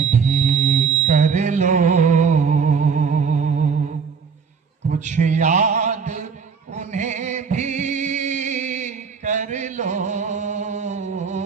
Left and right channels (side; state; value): left; quieter; 5.9 dB